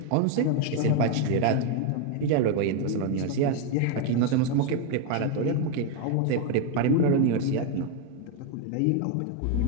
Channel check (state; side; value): different; both; correlation 0.01